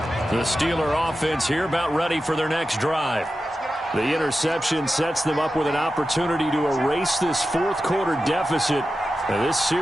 The Steeler offense here about ready for their next drive. The interception sets them up with an opportunity to erase this 4th quarter deficit. Now, this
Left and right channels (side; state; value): both; normal; correlation 0.92